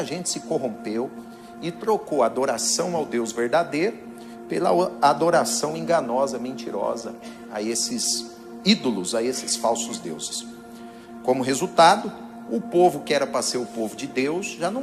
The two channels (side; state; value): both; identical; correlation 1.00